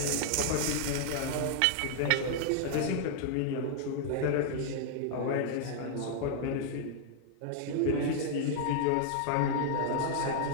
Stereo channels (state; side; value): different; both; correlation -0.01